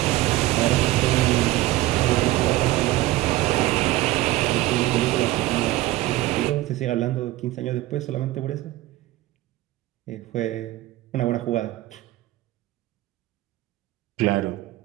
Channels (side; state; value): left; quieter; 16.8 dB